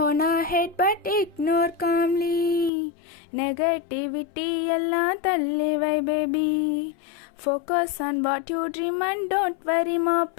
on our head but ignore calmly. Negativity எல்லாம் தள்ளி வை baby. Focus on what you dream and don't worry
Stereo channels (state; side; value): drops out; right; at 2.7 s